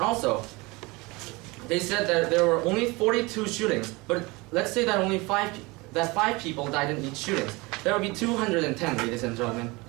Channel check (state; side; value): quieter; left; 24.3 dB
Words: also, they said that there were only 42 shootings, but let's say that only five people died in each shooting. There will be 210, ladies and gentlemen,